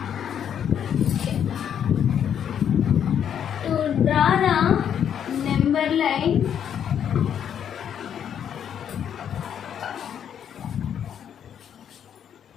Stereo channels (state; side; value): quieter; right; 8.9 dB